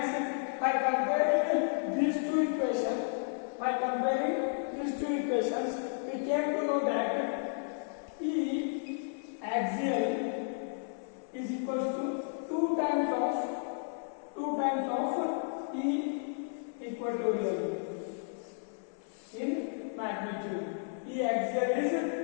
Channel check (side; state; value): right; silent; 56 dB below the other